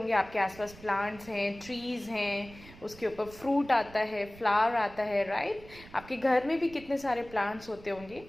आपके आसपास plants हैं, trees हैं, उसके ऊपर फ्रूट आता है, फ्लावर आता है, राइट? आपके घर में भी कितने सारे प्लांट्स होते होंगे.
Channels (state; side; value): noise; right; rumble, 19 dB below the sound